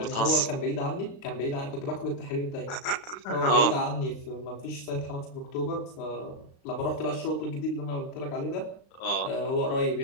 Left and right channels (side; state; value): right; late; 36 ms